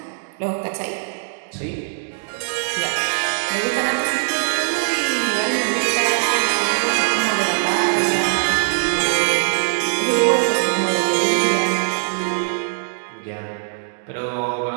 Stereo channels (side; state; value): left; silent; digital silence